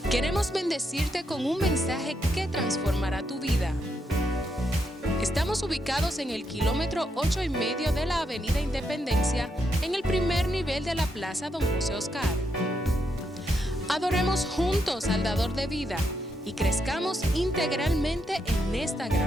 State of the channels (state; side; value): normal; both; correlation 0.80